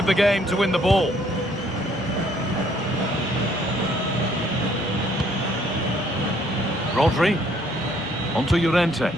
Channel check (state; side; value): normal; both; correlation 0.64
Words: the game to win the ball. Rodri. Onto Llorente.